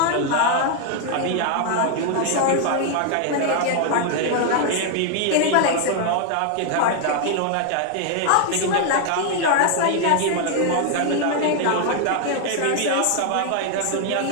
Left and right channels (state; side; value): different; both; correlation 0.00